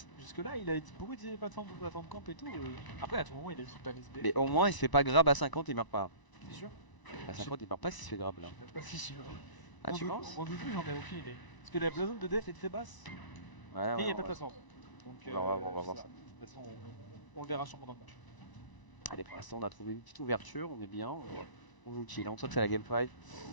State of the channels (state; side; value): late; right; 1.0 ms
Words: Jusque là, il a dit beaucoup de plateformes camp et tout. Après, à tout moment, il a dit pas SB. Mais au moins, il se fait pas grab à 50, il meurt pas. T'es sûr? À 50, il meurt pas s'il se fait grab là. Je suis même pas si sûr. Ah, tu penses? Mon doudou, j'en ai aucune idée. Parce que la zone de def est très basse. Ouais, Et il n'y a ouais, pas de ouais. plateforme. Donc, On va voir ça. De toute façon, on le verra sûrement dans le match. Allez, pour l'instant, on a trouvé une petite ouverture, on est bien. On joue chill, on sent que c'est la game 5.